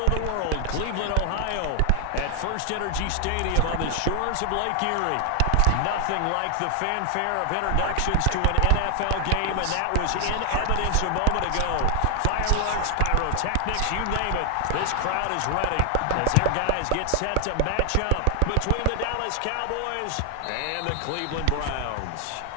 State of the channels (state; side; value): different; both; correlation 0.00